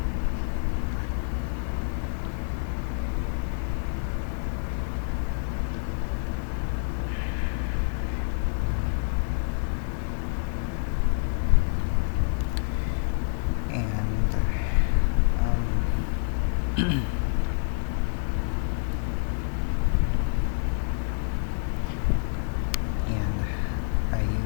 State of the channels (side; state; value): right; silent; digital silence